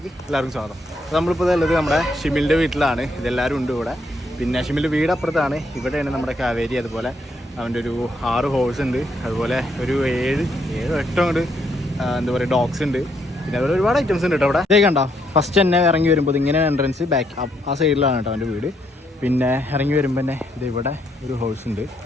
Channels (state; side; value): normal; both; correlation 0.74